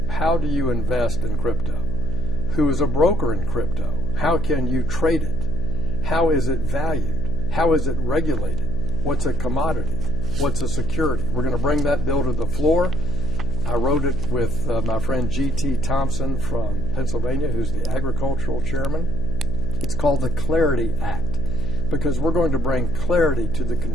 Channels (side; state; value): left; noise; hum, 5 dB below the sound